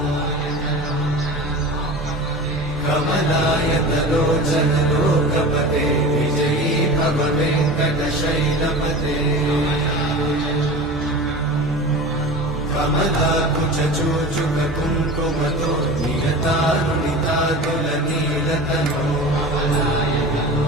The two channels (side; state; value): both; normal; correlation 0.33